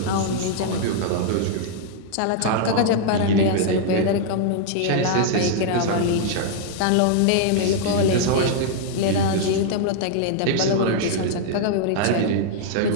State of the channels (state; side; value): different; both; correlation -0.01